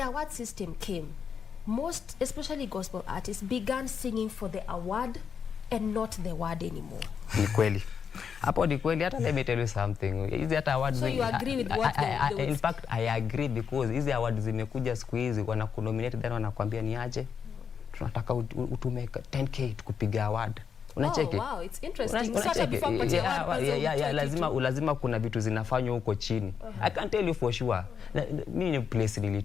award system came, most, especially gospel artists, began singing for the award and not the word anymore. Ni kweli. Hapo ni kweli. Hata let me tell you something. Hizi hata awards. So you agree with what they in fact, I agree, because hizi awards zimekuja siku hizi, wanakunominate then wanakuambia ni aje, tunataka utume 10k kupiga award. Unacheki? Oh, wow, it's interesting. Sasa before lazima kuna vitu zinafanywa huko chini. I can tell you for sure. Mimi ni place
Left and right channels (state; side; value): quieter; right; 6.9 dB